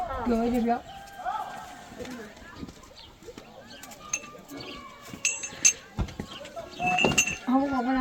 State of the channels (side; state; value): both; identical; correlation 1.00